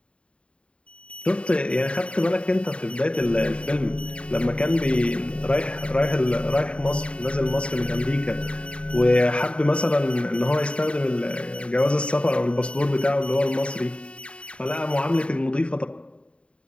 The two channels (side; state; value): right; late; 0.059 ms